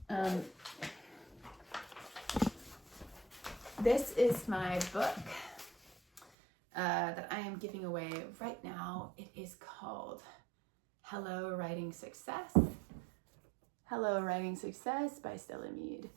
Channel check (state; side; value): drops out; left; at 6.2 s